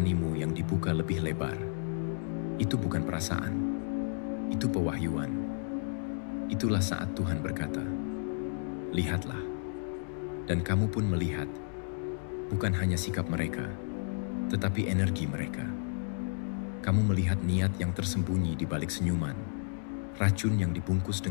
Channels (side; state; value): right; silent; 56 dB below the other